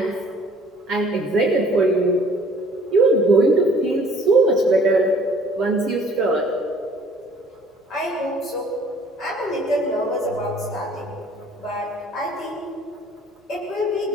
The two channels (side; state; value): both; normal; correlation 0.55